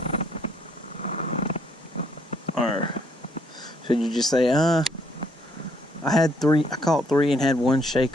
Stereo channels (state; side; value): normal; both; correlation 0.68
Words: Or should you just say, I caught 3 and had one shake